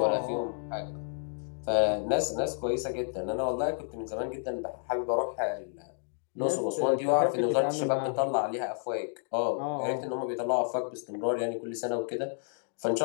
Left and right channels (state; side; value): silent; right; digital silence